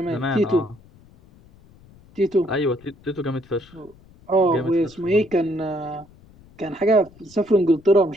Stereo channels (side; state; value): left; noise; rumble, 26 dB below the sound